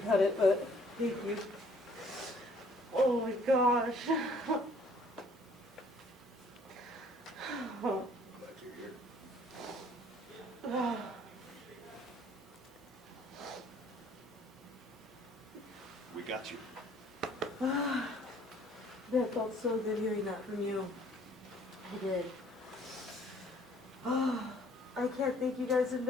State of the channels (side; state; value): both; normal; correlation 0.59